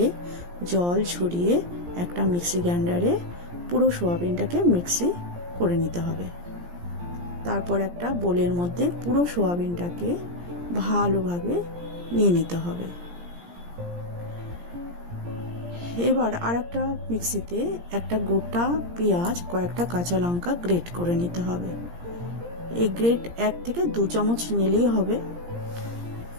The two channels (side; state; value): left; late; 17 ms